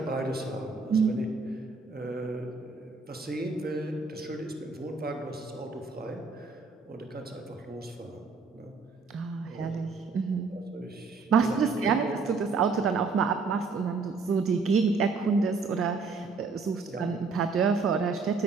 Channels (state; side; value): quieter; left; 4.4 dB